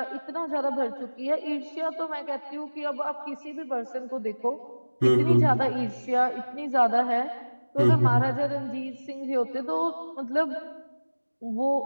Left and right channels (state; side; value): inverted; both; correlation -1.00